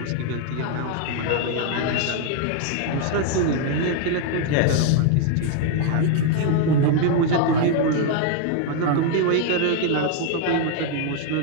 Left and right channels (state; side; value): different; both; correlation 0.00